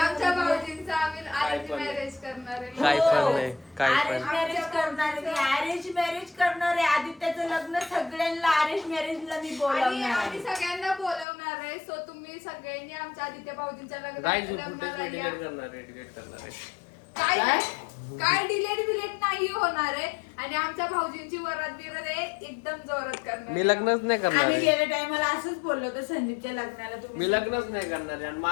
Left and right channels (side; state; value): right; drops out; at 11.2 s